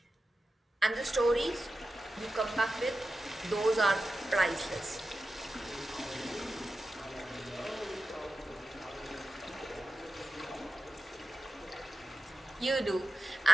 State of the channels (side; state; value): both; normal; correlation 0.92